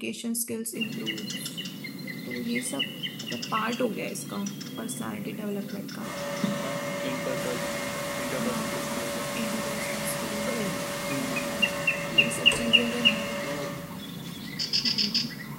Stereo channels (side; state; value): both; identical; correlation 1.00